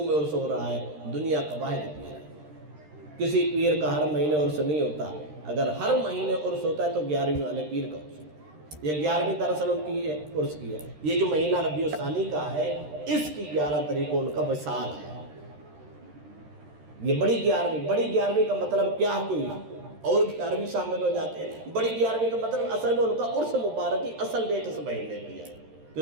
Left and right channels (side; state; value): left; late; 13 ms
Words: میں عرس ہو رہا ہے، دنیا کا واحد پیر ہے۔ کسی پیر کا ہر مہینے عرس نہیں ہوتا، اگر ہر مہینے عرس ہوتا ہے تو 11ویں والے پیر کا عرس ہوتا ہے۔ یہ 11ویں دراصل ان کی ہے، عرس کی ہے۔ یہ جو مہینہ ربیع الثانی کا ہے، اس کی 11 تاریخ کو ان کا وصال ہے۔ یہ بڑی 11ویں کا مطلب کیا کوئی اور 11ویں شامل ہو جاتے ہیں۔ بڑی 11ویں کا مطلب اصل میں ان کا عرس مبارک کی اصل ڈیٹ اس مہینے کی ہے، تو